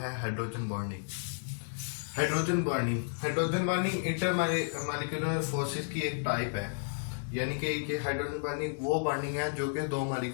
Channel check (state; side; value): silent; right; digital silence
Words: hydrogen bonding. Hydrogen bonding inter molecular forces की एक टाइप है, यानी कि हाइड्रोजन बॉन्डिंग वो बॉन्डिंग है जो कि दो